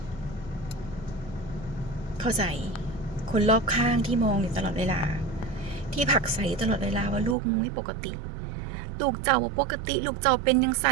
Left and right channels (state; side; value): drops out; left; at 7.4 s